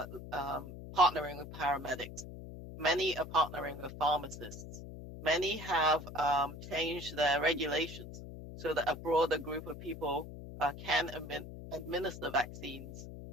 partnering with paramedics. Many are partnering with pharmacists. Many have changed their regulations so that a broader group of people can administer vaccines.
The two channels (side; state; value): left; noise; hum, 12 dB below the sound